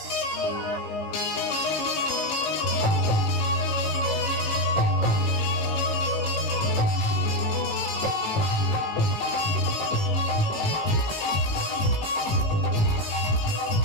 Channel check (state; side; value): late; right; 18 ms